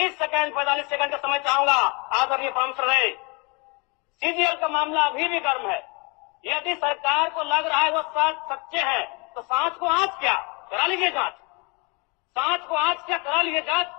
सेकंड 45 सेकंड का समय चाहूंगा। आदरणीय प्रांशु रहे, सीजीएल का मामला अभी भी गर्म है। यदि सरकार को लग रहा है वो सच्चे हैं तो सांच को आज क्या करा लीजिए जांच, सांच को आज क्या करा लीजिए जांच।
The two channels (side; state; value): right; quieter; 30.8 dB